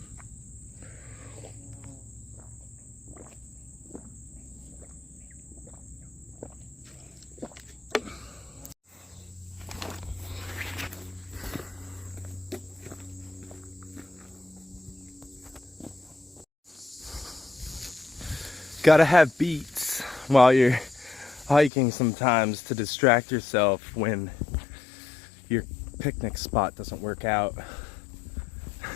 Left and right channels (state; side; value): drops out; right; at 21.7 s